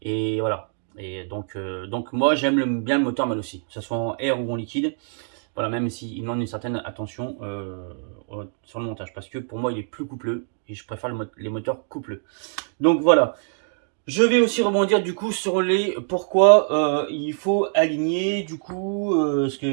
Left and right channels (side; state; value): left; silent; 61 dB below the other